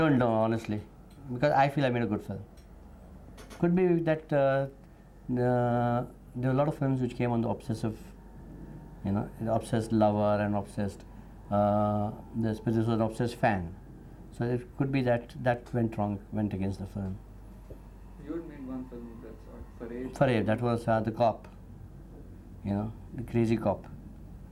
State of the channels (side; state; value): both; identical; correlation 1.00